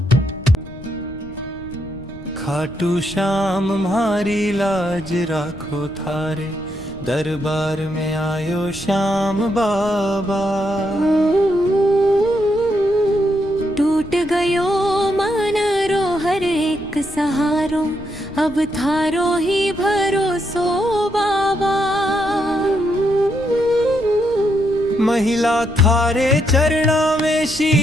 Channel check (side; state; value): left; noise; rumble, 18 dB below the sound